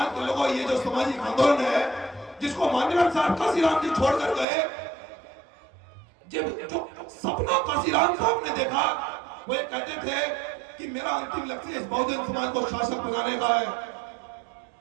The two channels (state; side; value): drops out; left; at 4.5 s